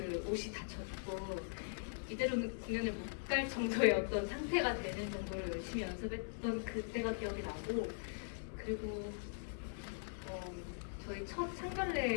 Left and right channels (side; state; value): right; silent; digital silence